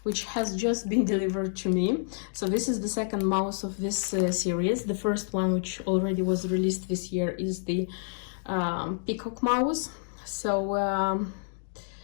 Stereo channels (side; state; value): right; silent; digital silence